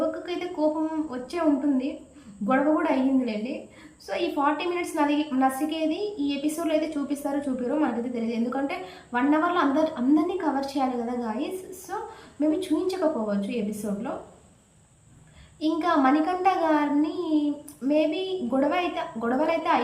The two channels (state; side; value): identical; both; correlation 1.00